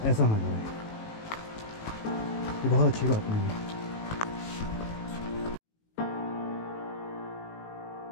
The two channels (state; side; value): late; right; 18 ms